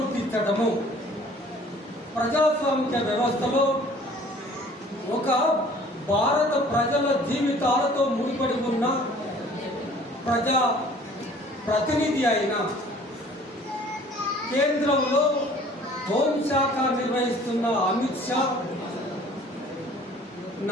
ప్రజాస్వామిక వ్యవస్థలో ఒక భారత ప్రజల జీవితాలతో ముడిపడి ఉన్న ప్రజా ప్రతినిధి అయిన కేంద్రంలో హోంశాఖ నిర్వహిస్తున్న అమిత్ షా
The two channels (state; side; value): normal; both; correlation 0.52